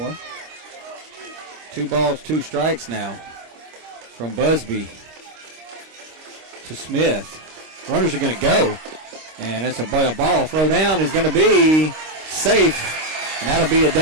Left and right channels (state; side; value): late; left; 26 ms